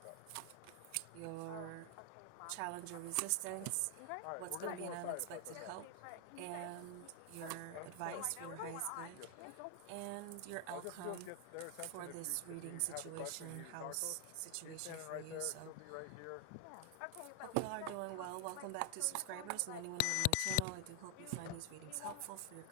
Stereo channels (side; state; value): both; different; correlation 0.00